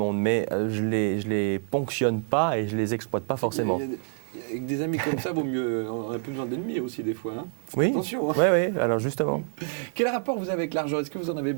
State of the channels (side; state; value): left; silent; 60 dB below the other